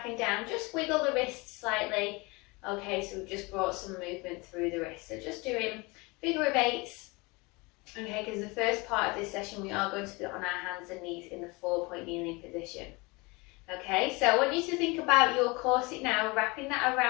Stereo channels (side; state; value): right; quieter; 25.9 dB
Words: and down, just wiggle the wrists slightly. Okay, so we've just brought some movement through the wrist. So just doing figure of eights. Okay, because the first part of this session we are going to be on our hands and knees in the 4-point kneeling position. Okay, so I want you to think about your corset now, wrapping that